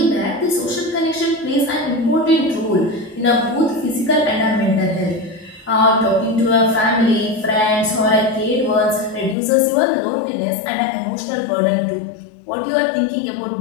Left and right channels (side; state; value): right; drops out; at 9.3 s